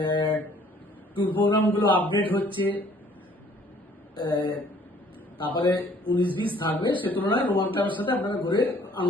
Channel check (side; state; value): both; normal; correlation 0.58